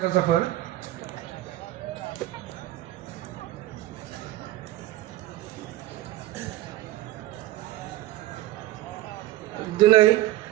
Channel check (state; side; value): quieter; left; 15.6 dB